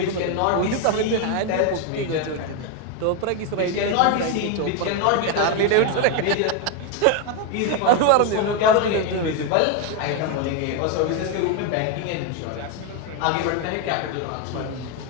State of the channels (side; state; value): both; different; correlation 0.01